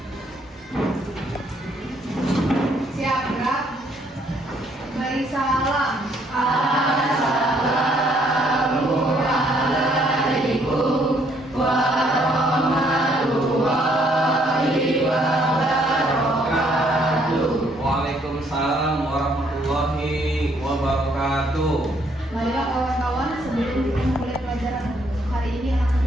Siap gerak. Beri salam. Assalamualaikum warahmatullahi wabarakatuh. Waalaikumsalam warahmatullahi wabarakatuh. Marilah kawan-kawan, sebelum kita memulai pelajaran hari ini, alangkah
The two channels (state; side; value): normal; both; correlation 0.67